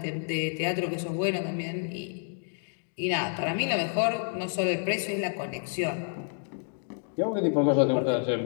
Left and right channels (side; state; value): right; silent; 58 dB below the other